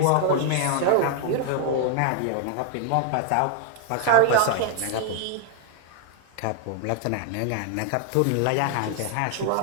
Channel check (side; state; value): both; different; correlation 0.00